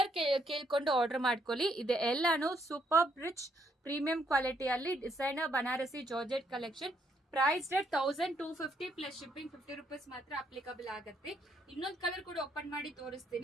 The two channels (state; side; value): normal; both; correlation 0.73